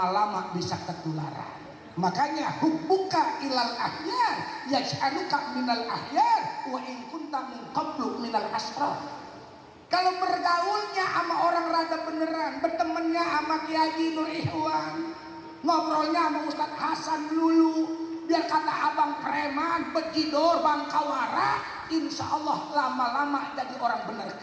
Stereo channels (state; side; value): identical; both; correlation 1.00